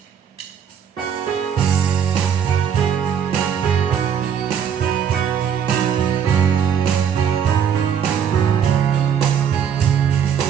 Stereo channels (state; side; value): quieter; left; 8.1 dB